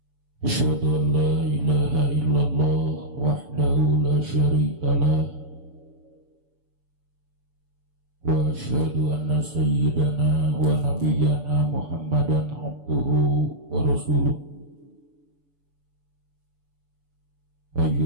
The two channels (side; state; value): left; late; 6.9 ms